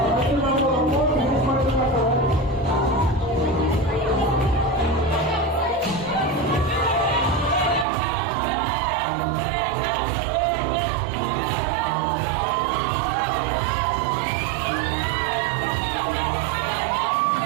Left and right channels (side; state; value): left; drops out; at 7.9 s